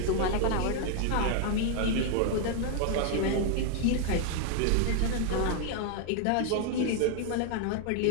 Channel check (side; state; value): both; different; correlation 0.00